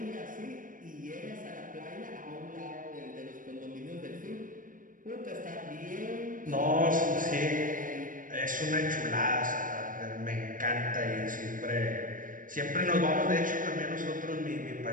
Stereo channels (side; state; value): left; late; 0.39 ms